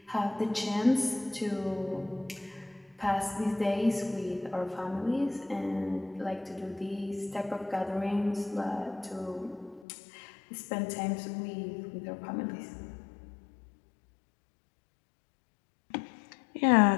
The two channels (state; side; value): drops out; right; at 9.9 s